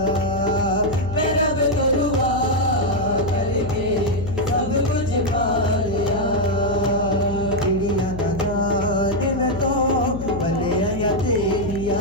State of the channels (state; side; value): noise; left; hum, 8 dB below the sound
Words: मैं रब को दुआ करके सब कुछ पा लिया। चिड़िया न जाने मैं तो भले या तेरिया।